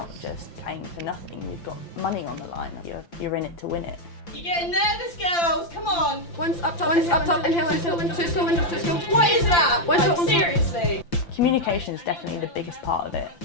just playing for nothing, you've got money on the line, you're in it to win it. You're getting nervous, girls, come on! One's up top, inhale, two skill. What is that? Like, seriously? Communication is definitely the biggest part of it.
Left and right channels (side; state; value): right; late; 5.8 ms